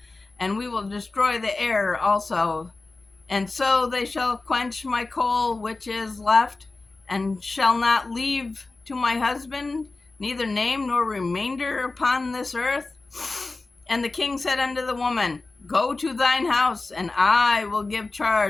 and we will destroy the heir also. And so they shall quench my coal which is left, and shall not leave to my husband neither name nor remainder upon this earth. And the king said unto the woman, Go to thine house, and I will give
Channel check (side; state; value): right; quieter; 3.5 dB